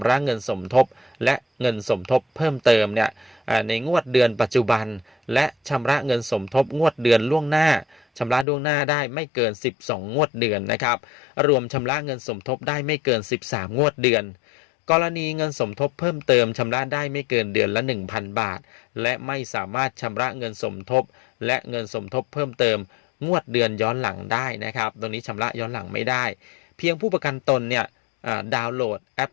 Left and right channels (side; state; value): right; drops out; at 8.5 s